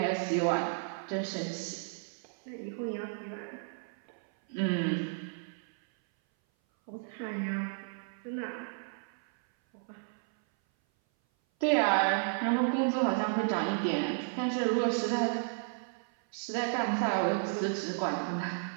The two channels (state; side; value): silent; left; 56 dB below the other